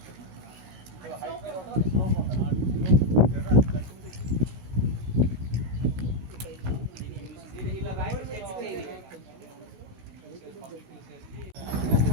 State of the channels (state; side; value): late; left; 16 ms